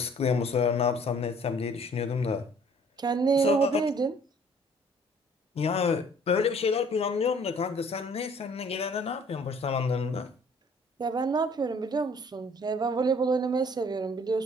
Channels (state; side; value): normal; both; correlation 0.56